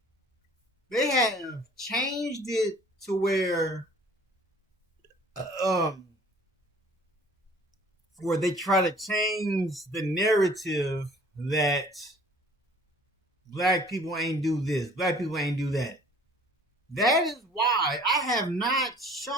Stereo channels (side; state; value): both; normal; correlation 0.52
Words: they have changed it to where they try to change the narrative that black people ain't do this, black people ain't do that. That is why I have not